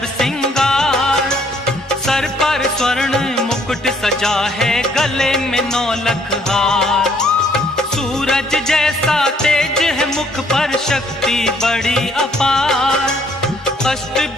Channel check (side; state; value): both; normal; correlation 0.65